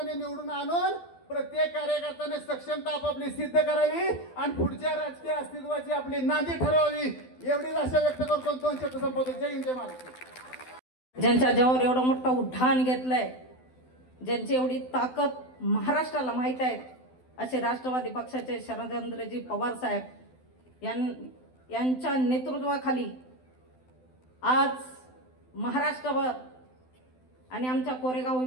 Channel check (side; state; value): right; late; 12 ms